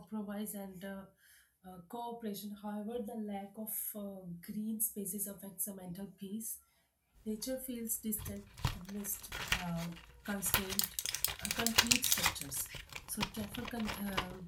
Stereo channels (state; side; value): identical; both; correlation 1.00